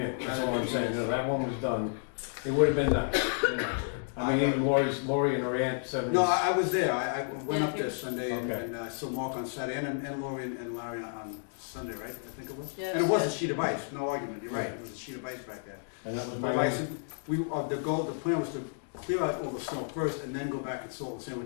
That's all I'm saying. No, that one was done. It would have been nice. You know. I mean, even Lori and her aunt said. No, I was there. I went up there Sunday Okay. and I saw Mark on Saturday and Lori and Larry on Sunday, right? I think it was. Yes. And it was a sheet of ice. No argument. You're right. It was a sheet of ice back there. And that was But my. I said, the plan was to clear out all the snow first and then go back and salt the sand,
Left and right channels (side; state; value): right; silent; digital silence